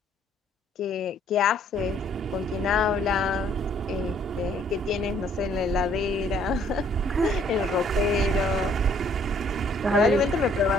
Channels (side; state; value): both; normal; correlation 0.63